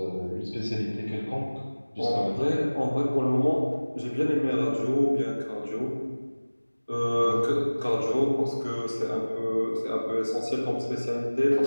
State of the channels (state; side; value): inverted; both; correlation -1.00